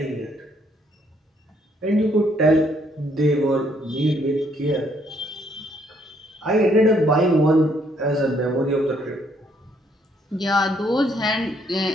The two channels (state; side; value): normal; both; correlation 0.69